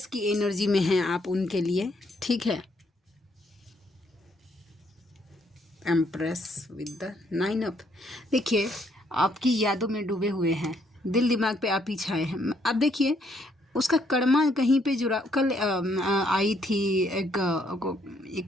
की एनर्जी में हैं आप उनके लिए, ठीक है। Empress with the 9 up. देखिए आपकी यादों में डूबे हुए हैं, दिल दिमाग पे आप ही छाए हैं। अब देखिए उसका कर्मा कहीं पे जुड़ा। कल आई थी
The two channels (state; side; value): normal; both; correlation 0.70